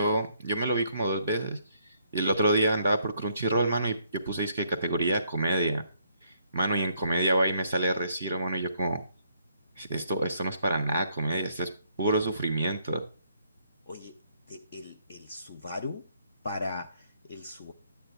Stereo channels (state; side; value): inverted; both; correlation -0.70